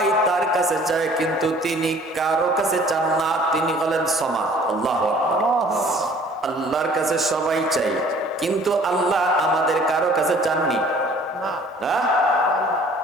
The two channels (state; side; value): normal; both; correlation 0.53